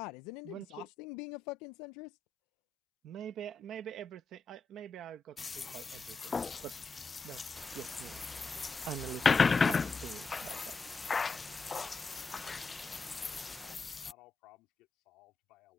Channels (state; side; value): quieter; right; 3.9 dB